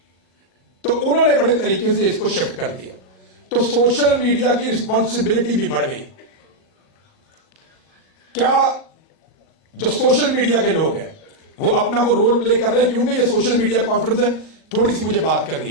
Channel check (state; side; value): late; right; 38 ms